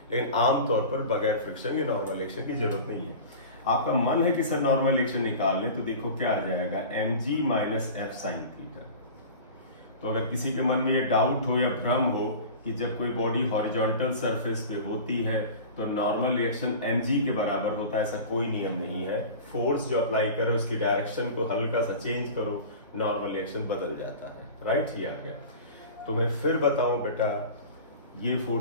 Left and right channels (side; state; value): both; inverted; correlation -0.36